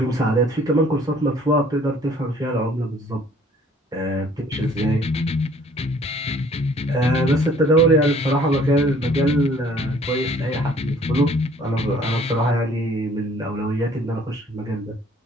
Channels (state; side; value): normal; both; correlation 0.56